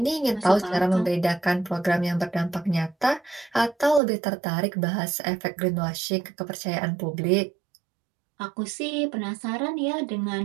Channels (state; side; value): drops out; left; at 4.0 s